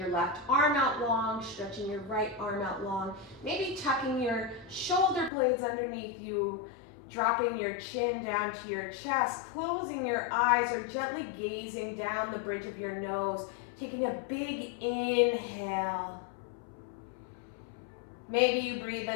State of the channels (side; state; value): right; drops out; at 5.3 s